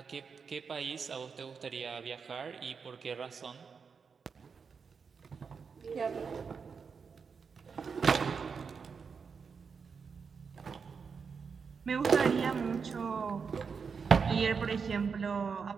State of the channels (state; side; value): quieter; left; 5.7 dB